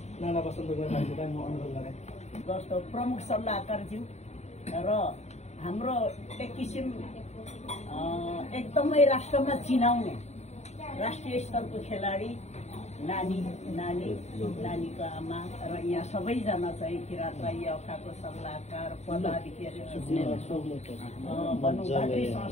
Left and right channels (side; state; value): right; late; 0.32 ms